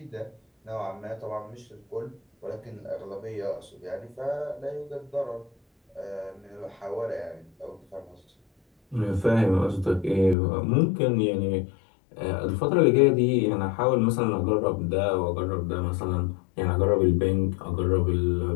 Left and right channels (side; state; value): right; drops out; at 10.4 s